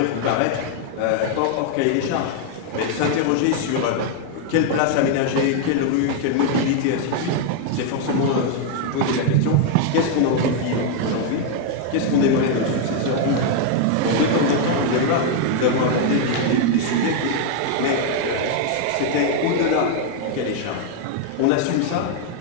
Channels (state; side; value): different; both; correlation 0.00